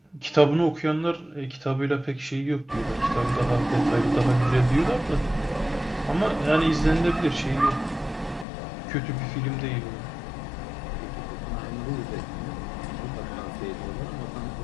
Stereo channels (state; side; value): drops out; right; at 8.5 s